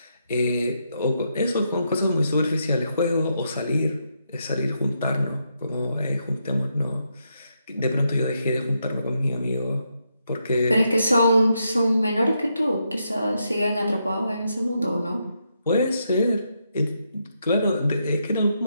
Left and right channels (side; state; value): both; inverted; correlation -0.80